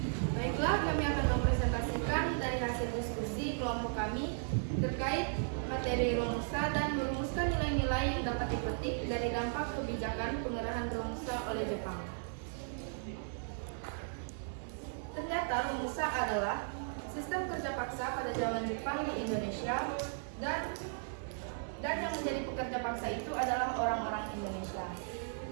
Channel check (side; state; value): left; silent; digital silence